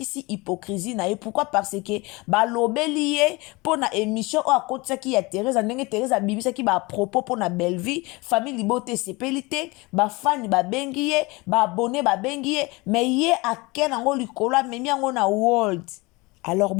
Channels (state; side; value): quieter; right; 24.3 dB